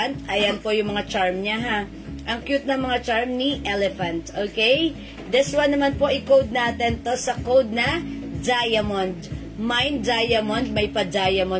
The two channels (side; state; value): both; identical; correlation 1.00